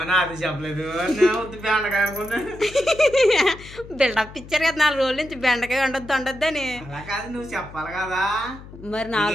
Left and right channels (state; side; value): noise; left; hum, 17 dB below the sound